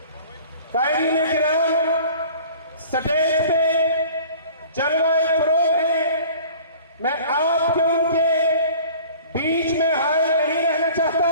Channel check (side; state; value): both; inverted; correlation -0.46